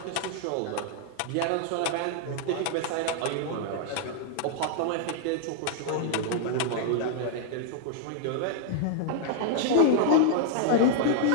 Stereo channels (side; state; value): both; different; correlation -0.01